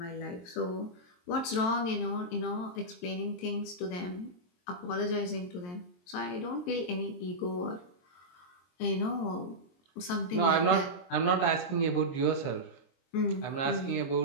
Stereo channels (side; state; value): right; late; 23 ms